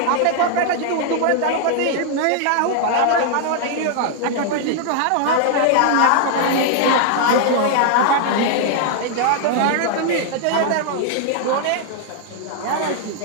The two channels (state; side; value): different; both; correlation 0.00